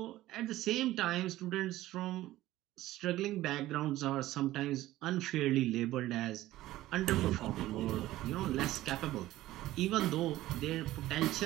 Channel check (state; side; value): quieter; left; 15.7 dB